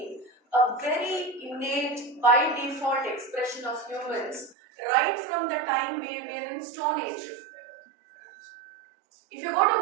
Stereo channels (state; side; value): drops out; left; at 4.5 s